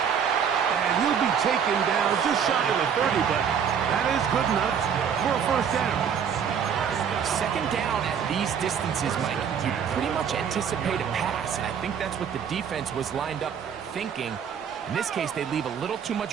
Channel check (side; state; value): left; quieter; 7.6 dB